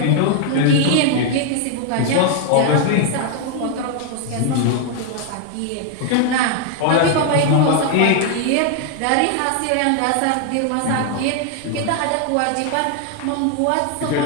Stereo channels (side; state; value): both; different; correlation 0.00